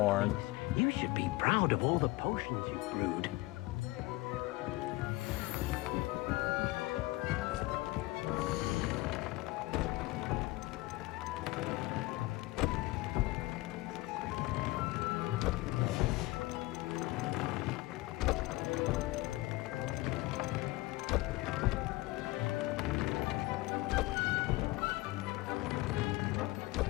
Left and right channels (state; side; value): quieter; right; 20.5 dB